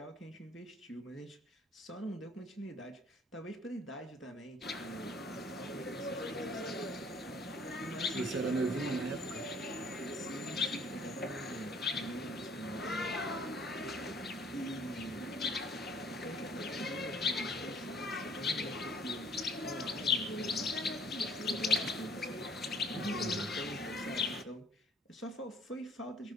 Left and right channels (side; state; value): both; normal; correlation 0.57